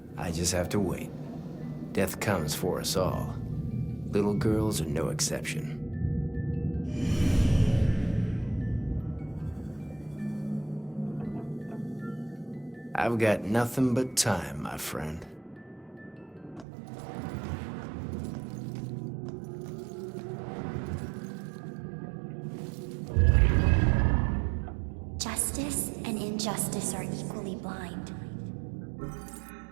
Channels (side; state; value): left; drops out; at 16.7 s